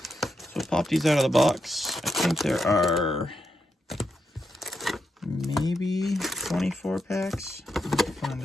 So pop these out of the box. I think there are maybe 24 packs. Let's find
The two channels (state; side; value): normal; both; correlation 0.83